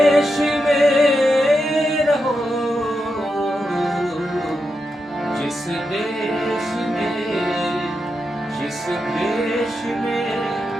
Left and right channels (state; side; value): normal; both; correlation 0.86